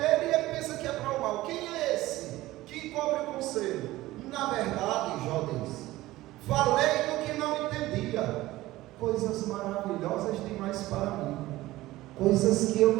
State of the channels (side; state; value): left; quieter; 17.2 dB